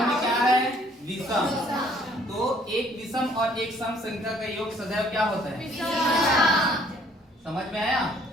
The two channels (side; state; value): both; normal; correlation 0.61